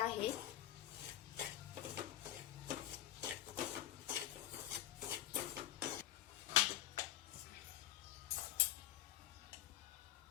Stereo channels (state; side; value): quieter; right; 12.9 dB